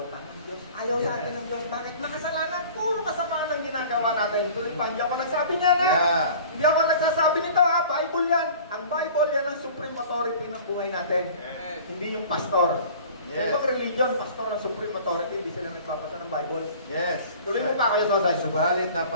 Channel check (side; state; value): both; inverted; correlation -0.44